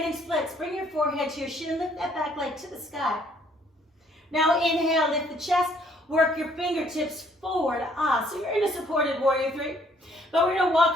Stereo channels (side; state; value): both; normal; correlation 0.63